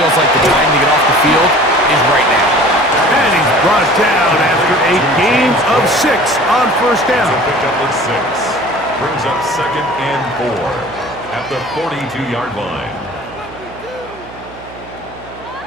like the time to get off the field is right now. And he's brought down after a gain of 6 on first down. It's a pickup of 6. Brings up second and 4 at the 42-yard line.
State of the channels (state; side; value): noise; right; hum, 19 dB below the sound